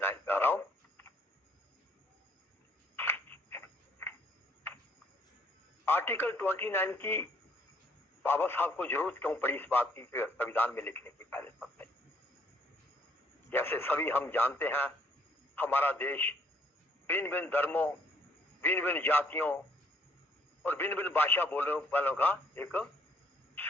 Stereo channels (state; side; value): normal; both; correlation 0.65